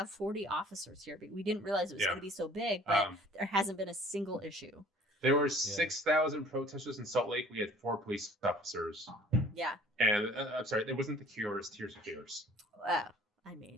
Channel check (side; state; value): both; normal; correlation 0.52